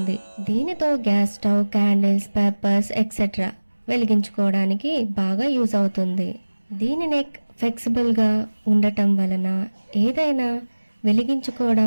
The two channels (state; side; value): inverted; both; correlation -1.00